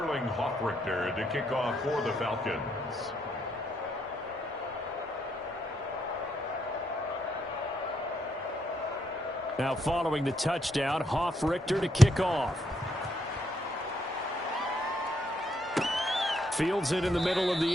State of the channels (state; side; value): normal; both; correlation 0.75